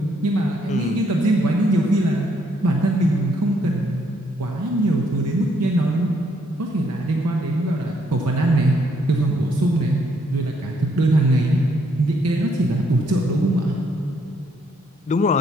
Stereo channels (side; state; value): both; normal; correlation 0.71